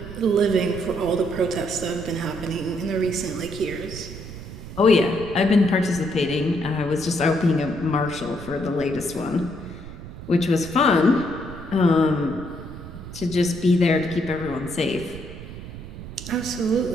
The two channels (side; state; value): right; noise; rumble, 13 dB below the sound